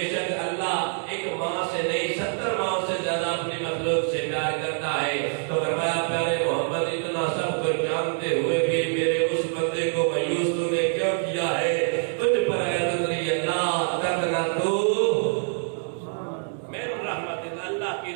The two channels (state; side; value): silent; left; 61 dB below the other